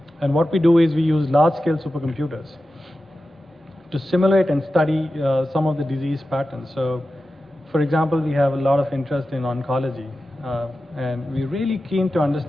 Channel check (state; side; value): normal; both; correlation 0.93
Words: And what we do is we use large-scale supercomputers to simulate and study some of the disease patterns. So, for example, we have a lot of interest in oncology. And we're really keen to